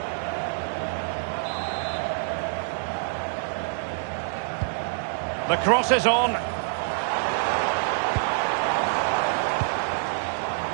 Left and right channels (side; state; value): left; silent; 61 dB below the other